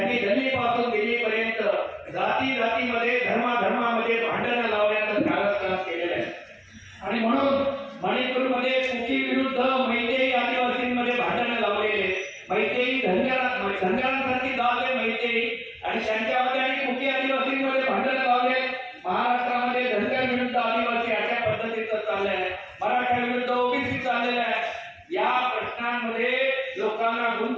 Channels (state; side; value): identical; both; correlation 1.00